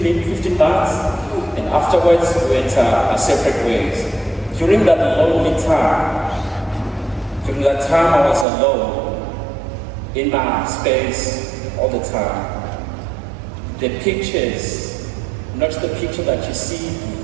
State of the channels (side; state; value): left; drops out; at 8.5 s